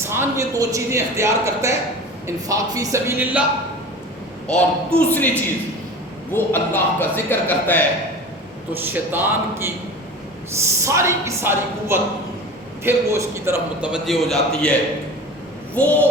یہ 2 چیزیں اختیار کرتا ہے، انفاق فی سبیل اللہ اور دوسری چیز وہ اللہ کا ذکر کرتا ہے، تو شیطان کی ساری کی ساری قوت پھر وہ اس کی طرف متوجہ ہو جاتی ہے۔ وہ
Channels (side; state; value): both; normal; correlation 0.36